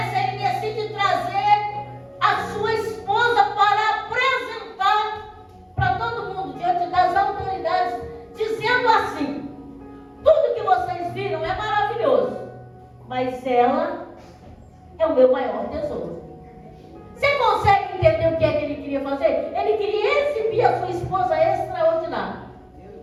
Ele decide trazer a sua esposa para apresentar para todo mundo, diante das autoridades, dizendo assim: tudo que vocês viram é maravilhoso, mas ela é o meu maior tesouro. Você consegue entender o que é que ele queria fazer? Ele queria exibir a sua esposa extraordinária.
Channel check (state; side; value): identical; both; correlation 1.00